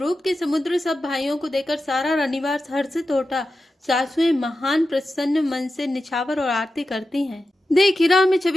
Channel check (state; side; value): normal; both; correlation 0.91